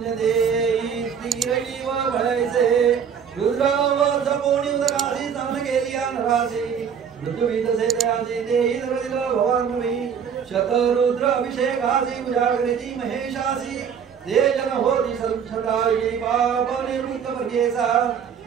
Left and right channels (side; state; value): left; quieter; 7.4 dB